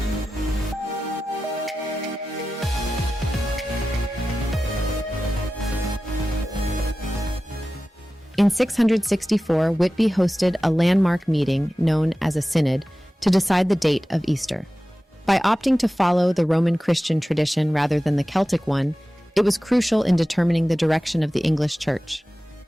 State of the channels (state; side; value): normal; both; correlation 0.95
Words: In 664, Whitby hosted a landmark meeting known as a synod to decide the date of Easter. By opting to follow the Roman Christian tradition rather than the Celtic one, it was crucial in determining the direction of the English Church.